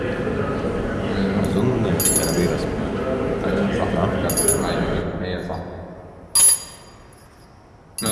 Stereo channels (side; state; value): both; identical; correlation 1.00